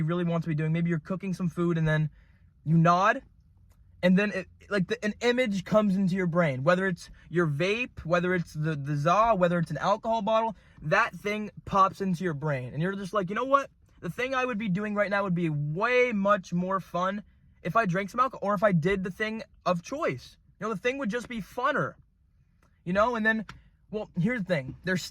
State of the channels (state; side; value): identical; both; correlation 1.00